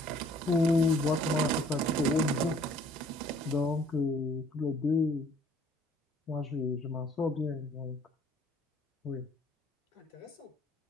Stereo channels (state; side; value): normal; both; correlation 0.58